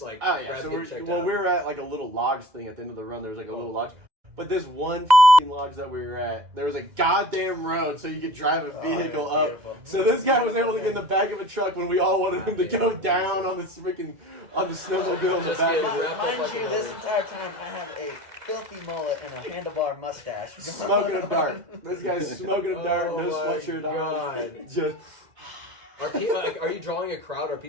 like? Oh yeah. Brad So getting checked we out? were at like a little logs thing at the end of the run. There was like a little lodge, but this one lodge that we were at, there was a goddamn road so you could drive a vehicle up. Beautiful. So this guy was able to get in the back of a truck when we all wanted him to go down on this freaking on the snowmobile in the Just back. getting wrapped up Mind like you, a this mother. entire time I have a filthy mullet and a handlebar mustache. Smoking a dart. This guy's smoking a dart, no Oh my sweatshirt God. on. Just Are people like? Are you drawing a crowd? Are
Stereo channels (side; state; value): left; late; 2.0 ms